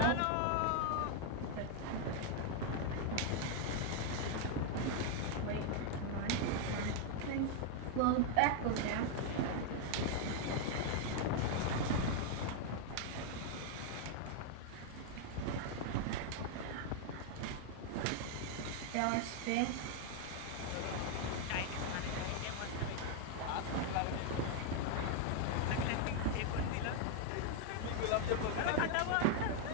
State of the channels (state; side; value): different; both; correlation 0.00